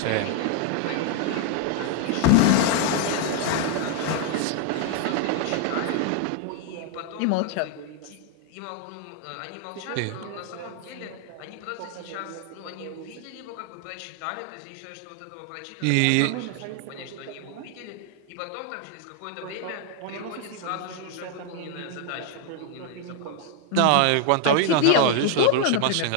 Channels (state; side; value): different; both; correlation 0.01